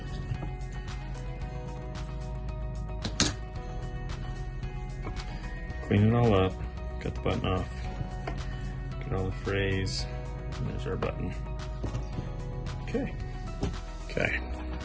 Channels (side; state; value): both; identical; correlation 1.00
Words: Clean it all up, cut the button off, get all the frays, and there's our button. Okay.